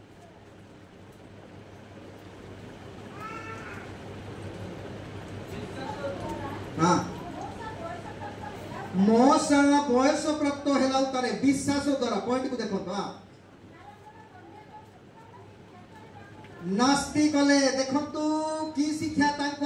हां मोसा बयस प्राप्त हेला तारे विश्वास द्वारा पॉइंट को देखो हां नास्ति कले देखंतु की शिक्षा तांको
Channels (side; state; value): both; identical; correlation 1.00